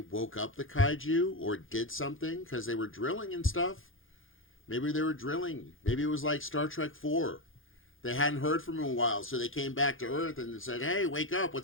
woke up the kaiju or did something because they were drilling and stuff. Maybe they were drilling. Maybe it was like Star Trek 4. They hadn't heard from them in a while, so they came back to Earth and said, "Hey, wake up,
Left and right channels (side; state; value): right; late; 0.59 ms